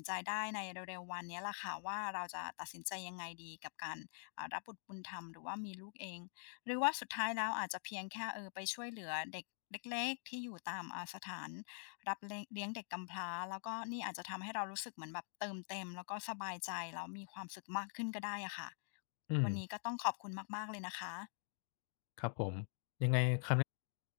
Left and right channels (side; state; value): right; silent; digital silence